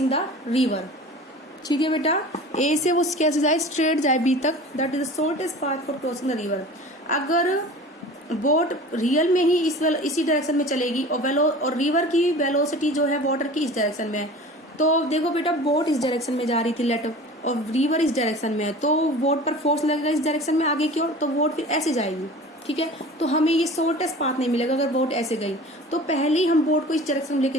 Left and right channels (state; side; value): normal; both; correlation 0.40